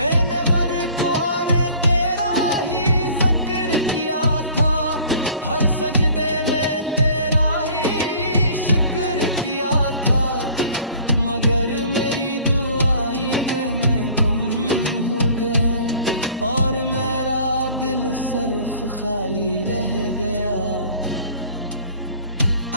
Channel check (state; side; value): inverted; both; correlation -0.50